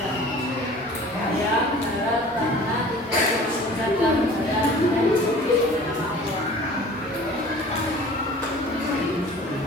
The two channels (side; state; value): both; normal; correlation 0.45